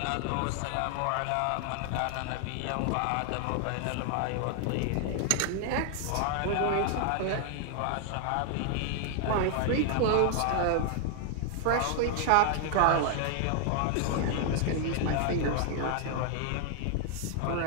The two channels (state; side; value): different; both; correlation 0.00